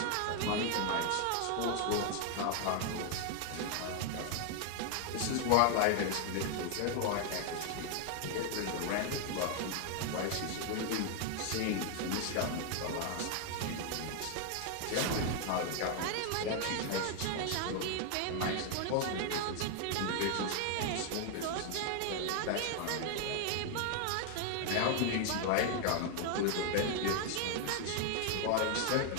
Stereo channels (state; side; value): different; both; correlation 0.00